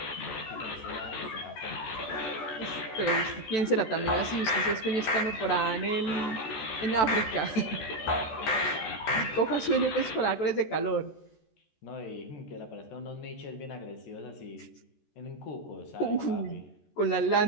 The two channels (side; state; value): right; late; 14 ms